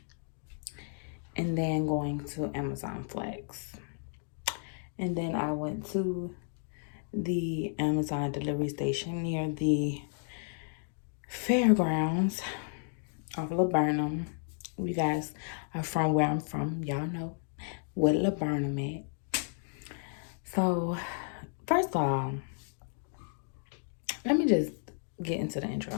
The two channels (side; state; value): right; silent; 56 dB below the other